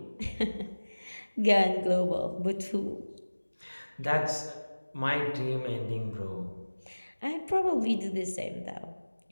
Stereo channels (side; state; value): both; inverted; correlation -1.00